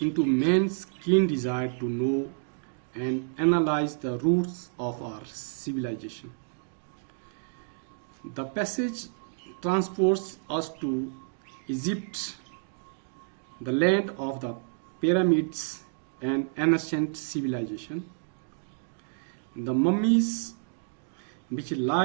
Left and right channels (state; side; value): silent; left; digital silence